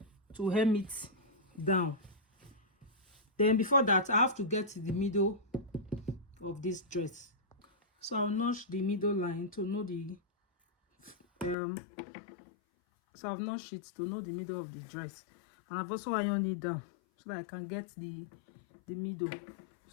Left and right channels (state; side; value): drops out; right; at 11.6 s